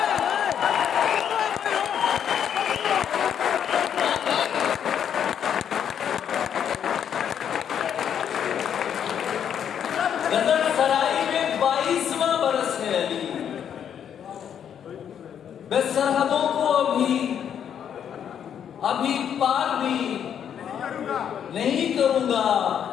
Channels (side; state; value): right; quieter; 8.7 dB